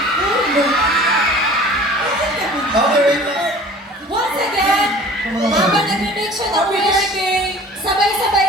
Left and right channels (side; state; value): both; normal; correlation 0.45